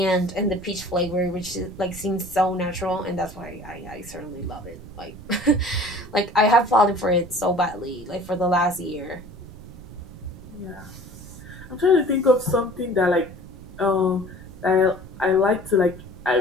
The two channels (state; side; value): noise; right; rumble, 16 dB below the sound